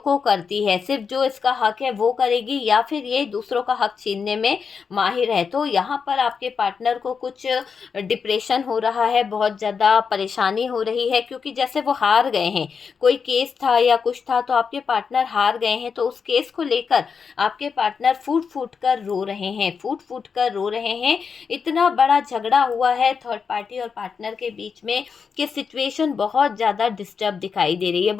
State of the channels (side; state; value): right; quieter; 5.9 dB